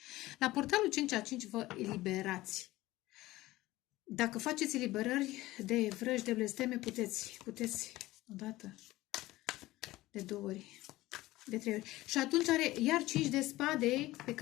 La portalul 5 a 5 vă eliberați. Dacă faceți eliberări de vrăji, de blesteme, puteți odată, de 2 ori, de 3 ori. Și atunci are iar 5 de spade, pe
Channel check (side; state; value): right; quieter; 17.7 dB